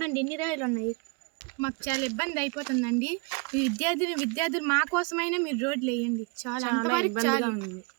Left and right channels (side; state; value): left; quieter; 30.9 dB